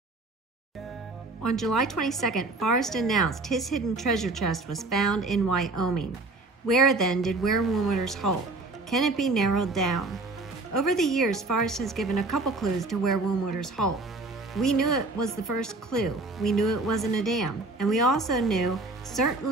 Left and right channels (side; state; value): left; quieter; 3.2 dB